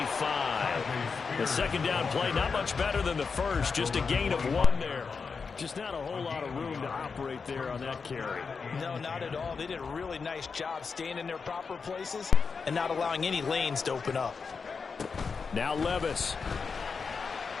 The second down play, not much better than the first. Just a gain of 1 there. Just not a whole lot of room to operate there on that carry. No, not at all. They did a really nice job staying in their proper places and not allowing any lanes to open up. Now Levis.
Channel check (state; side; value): quieter; right; 5.2 dB